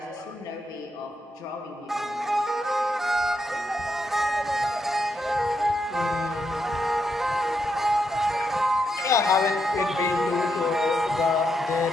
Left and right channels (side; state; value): both; normal; correlation 0.82